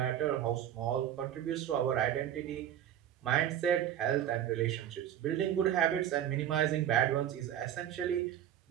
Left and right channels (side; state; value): left; quieter; 10.7 dB